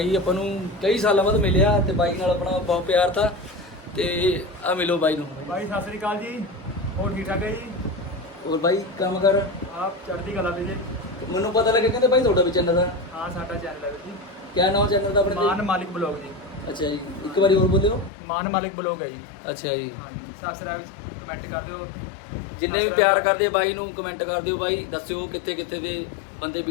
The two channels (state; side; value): drops out; right; at 18.1 s